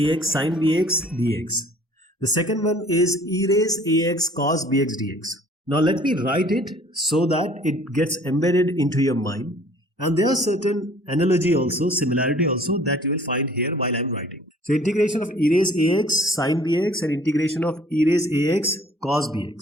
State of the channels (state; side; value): normal; both; correlation 0.53